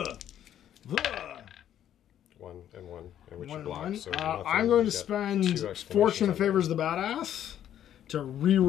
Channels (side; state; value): right; quieter; 10.7 dB